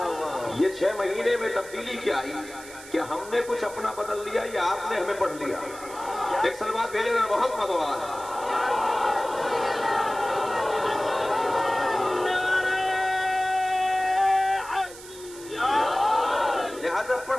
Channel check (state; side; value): noise; right; hiss, 17 dB below the sound